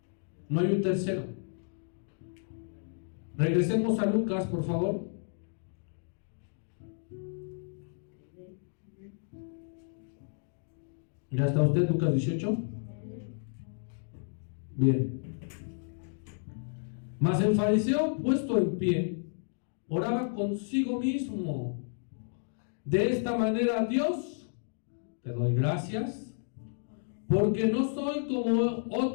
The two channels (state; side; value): silent; right; digital silence